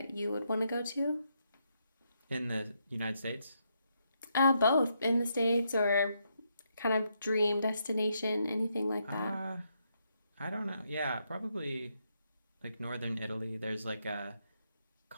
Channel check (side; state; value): both; inverted; correlation -0.78